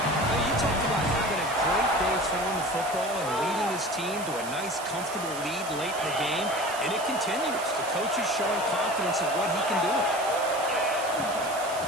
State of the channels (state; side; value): noise; right; hiss, 12 dB below the sound